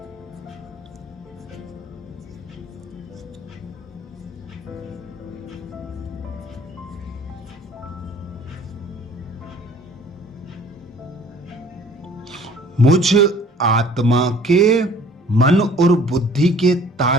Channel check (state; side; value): normal; both; correlation 0.53